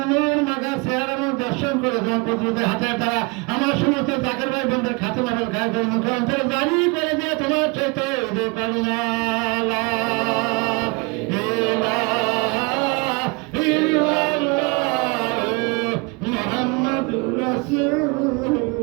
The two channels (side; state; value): left; quieter; 28.8 dB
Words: নূর মাখা চেহারা দর্শন করে তোমার প্রতিনিধি হাতের দ্বারা আমার সমস্ত জাকের ভাই বন্ধুর খাতে মাবেল খায় করে মুখান্তরে জানি করে দিয়ে তোমার চাইতে করুণা